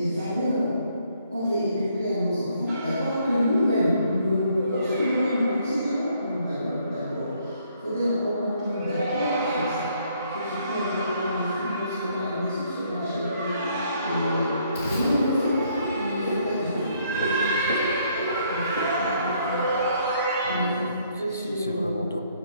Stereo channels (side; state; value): both; inverted; correlation -0.68